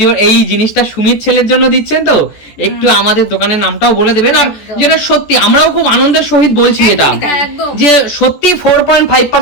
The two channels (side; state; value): right; late; 14 ms